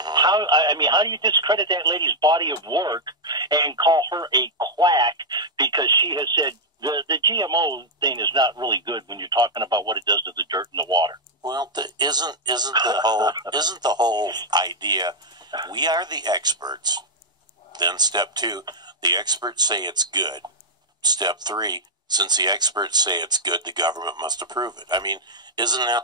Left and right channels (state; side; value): normal; both; correlation -0.05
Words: do you discredit that lady's body of work and call her a quack because she has said the GMO thing is not really good when you're talking about what it does to the dirt and the water? Well, isn't the whole idea? We are the experts. Then step 2, the experts say it's good. Step 3, since the experts say it's good, the government must approve it. I mean, isn't